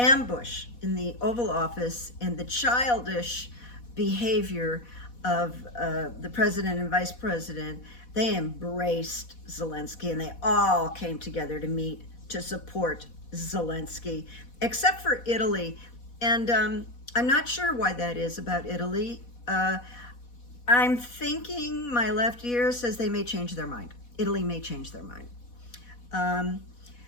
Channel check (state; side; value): late; right; 4.1 ms